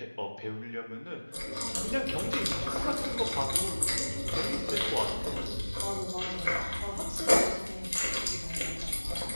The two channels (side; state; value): both; inverted; correlation -1.00